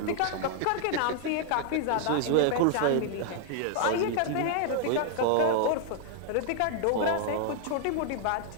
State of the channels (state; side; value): different; both; correlation 0.00